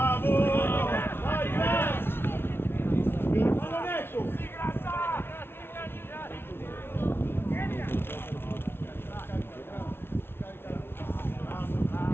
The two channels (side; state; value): right; late; 0.11 ms